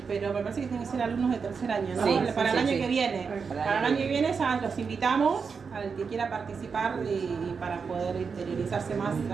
pero me parece que tienen que ser alumnos de tercer año, ¿no? Sí, para el año sí. que viene. Para el año que viene ya los invitamos al que quiera participar y para poder interiorizarse más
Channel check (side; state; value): left; quieter; 5.6 dB